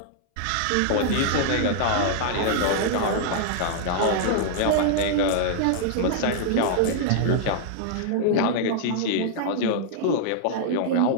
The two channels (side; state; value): both; different; correlation -0.01